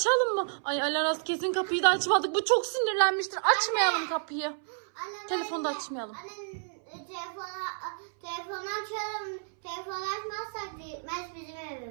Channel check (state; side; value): silent; left; 58 dB below the other